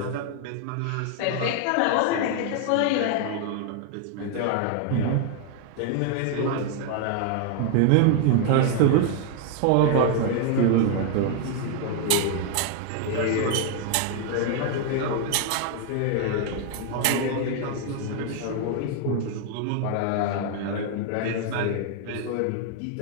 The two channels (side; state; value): both; different; correlation 0.00